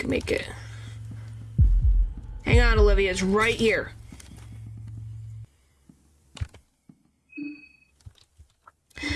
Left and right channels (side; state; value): both; identical; correlation 1.00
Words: make it. Hang on, Olivia, it's right here.